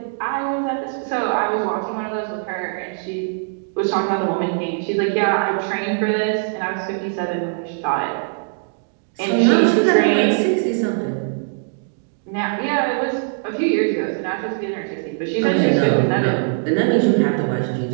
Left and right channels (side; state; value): left; silent; digital silence